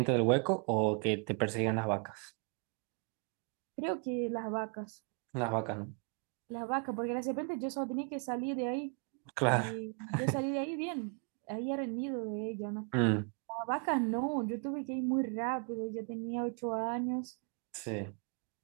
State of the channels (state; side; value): quieter; left; 39.2 dB